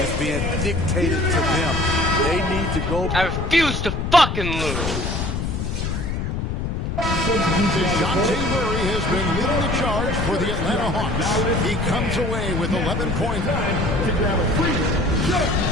being dictated to them. They need to go. I refuse to fucking lose. DeJounte Murray has been leading the charge for the Atlanta Hawks. He comes away with 11 points. To grab a free shot.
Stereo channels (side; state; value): left; noise; rumble, 2 dB below the sound